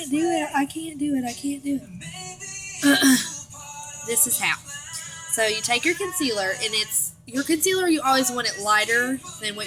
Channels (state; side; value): identical; both; correlation 1.00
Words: do it. I can't do it. This is how. So you take your concealer, and your concealer, you always want it lighter than what